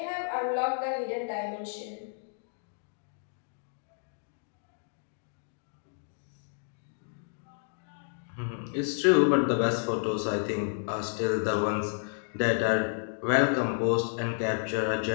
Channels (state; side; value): silent; right; digital silence